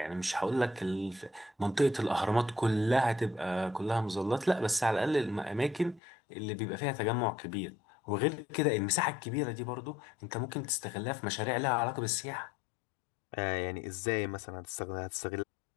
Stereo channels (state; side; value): drops out; right; at 6.0 s